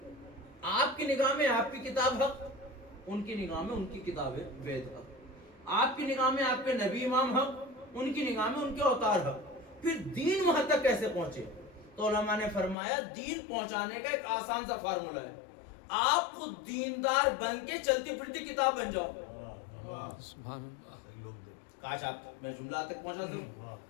آپ کی نگاہ میں آپ کی کتاب حق، ان کی نگاہ میں ان کی کتاب ہے وید حق. آپ کی نگاہ میں آپ کے نبی امام حق، ان کی نگاہ میں ان کے اوتار حق. پھر دین وہاں تک کیسے پہنچے؟ تو علماء نے فرمایا دین پہنچانے کا ایک آسان سا فارمولہ ہے، آپ خود دیندار بن کے چلتی پھرتی کتاب بن جاؤ. کاش آپ میں جملہ تک پہنچا دوں.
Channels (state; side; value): drops out; right; at 12.8 s